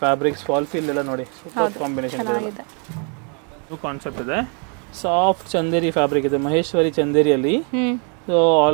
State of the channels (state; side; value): quieter; left; 38.2 dB